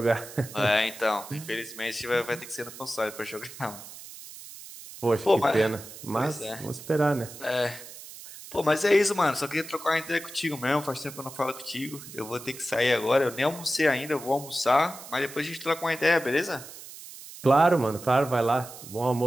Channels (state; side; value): noise; right; hiss, 15 dB below the sound